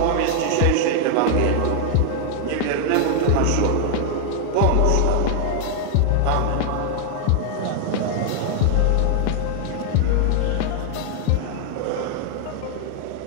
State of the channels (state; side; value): different; both; correlation 0.00